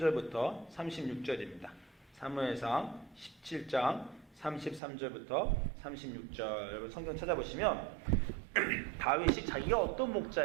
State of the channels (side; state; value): left; drops out; at 4.8 s